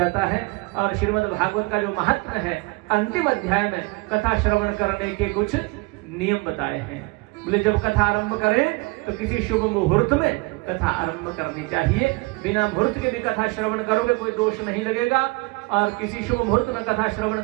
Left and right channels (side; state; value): left; quieter; 25.6 dB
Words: है। और श्रीमद् भागवत का जो महत्व है, अंतिम अध्याय में कथा श्रवण करने के कुछ नियम बताए हैं। बोले जब कथा आरंभ करें तो किसी शुभ मुहूर्त में कथा आरंभ करनी चाहिए। बिना मुहूर्त के भी कथा श्रवण करोगे कोई दोष नहीं लगेगा। और किसी शुभ मुहूर्त में कथा श्रवण